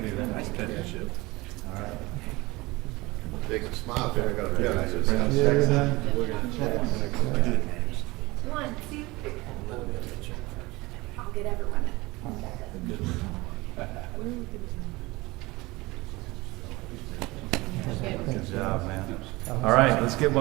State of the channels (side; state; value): left; quieter; 22.0 dB